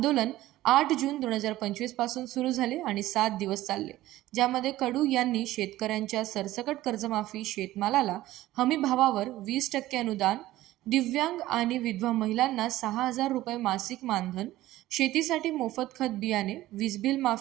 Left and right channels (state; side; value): quieter; left; 15.8 dB